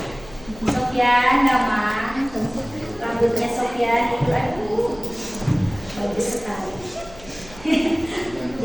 Sofyan nama rambutnya Sofyan itu aduh bagus sekali.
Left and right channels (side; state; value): left; noise; hum, 20 dB below the sound